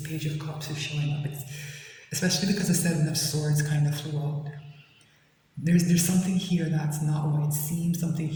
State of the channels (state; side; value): identical; both; correlation 1.00